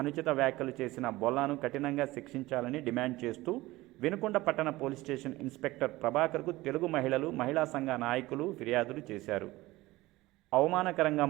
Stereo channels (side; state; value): left; quieter; 18.9 dB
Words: అనుచిత వ్యాఖ్యలు చేసిన బొల్లాను కఠినంగా శిక్షించాలని డిమాండ్ చేస్తూ వినుకొండ పట్టణ పోలీస్ స్టేషన్ ఇన్స్పెక్టర్ ప్రభాకర్కు తెలుగు మహిళలు, మహిళా సంఘ నాయకులు ఫిర్యాదులు చేశారు. అవమానకరంగా